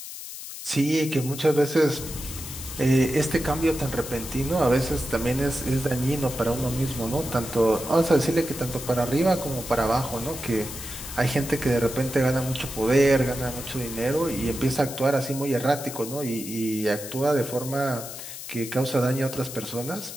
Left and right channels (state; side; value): noise; left; hiss, 10 dB below the sound